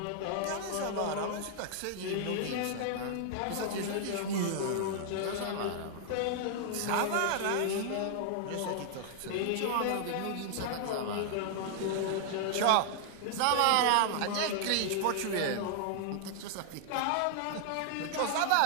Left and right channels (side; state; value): both; different; correlation 0.00